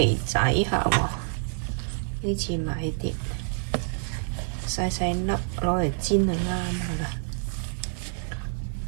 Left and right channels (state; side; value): silent; left; 60 dB below the other